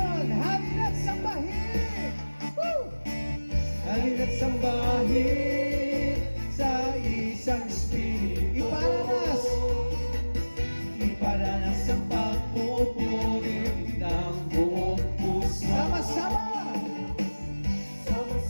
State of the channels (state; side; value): inverted; both; correlation -1.00